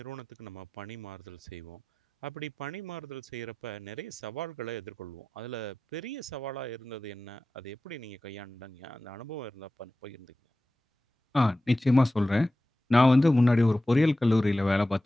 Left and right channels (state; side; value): normal; both; correlation 0.94